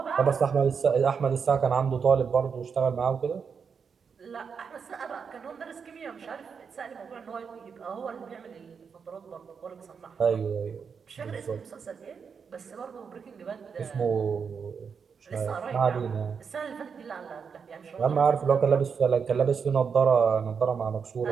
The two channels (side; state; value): left; quieter; 6.2 dB